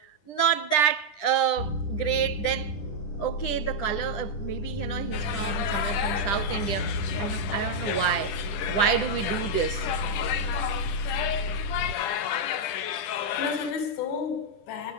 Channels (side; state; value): right; late; 10 ms